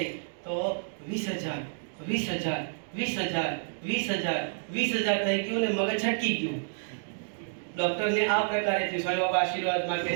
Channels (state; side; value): silent; left; digital silence